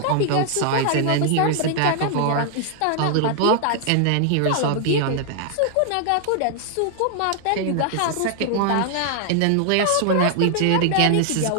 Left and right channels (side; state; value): both; different; correlation 0.00